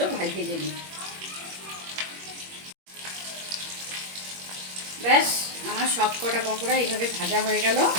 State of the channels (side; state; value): left; late; 21 ms